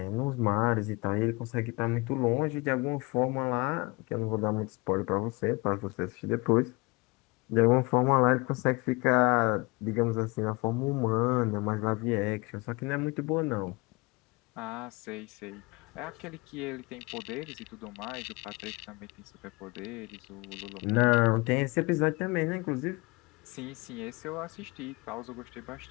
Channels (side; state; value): right; quieter; 26.3 dB